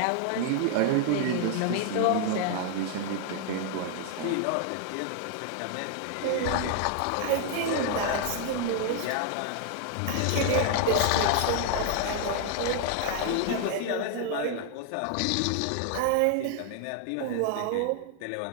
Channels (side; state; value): both; different; correlation 0.00